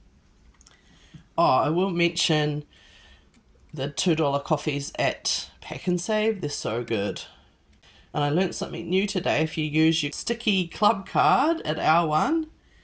Oh, I will mention the $2 coffees at Pack and Save. They're so good. And I learnt something new today. If you use your sticky club card at our one,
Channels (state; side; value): identical; both; correlation 1.00